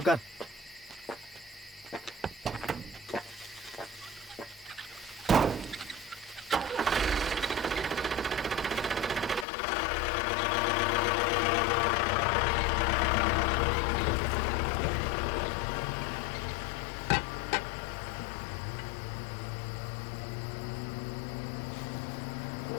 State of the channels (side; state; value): right; drops out; at 9.5 s